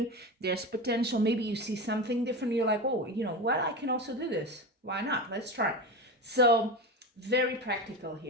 There's potential. Maybe you see something different. You're like, oh, what? I can also do this. Why not? Let's try. So very practical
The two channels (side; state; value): both; normal; correlation 0.23